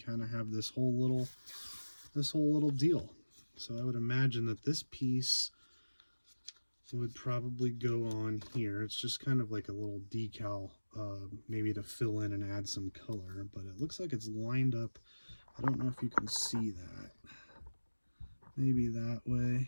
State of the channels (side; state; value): both; inverted; correlation -1.00